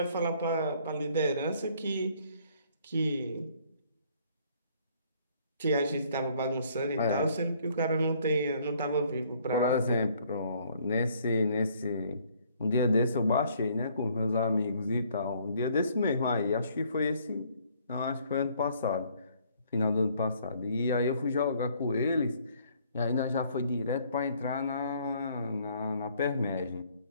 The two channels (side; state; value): both; inverted; correlation -0.63